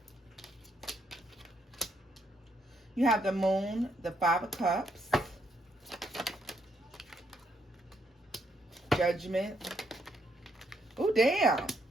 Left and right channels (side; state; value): both; normal; correlation 0.75